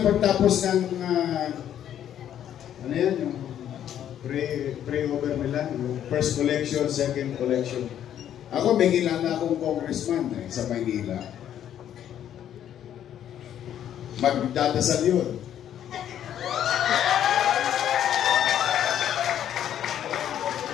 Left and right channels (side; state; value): right; quieter; 10.4 dB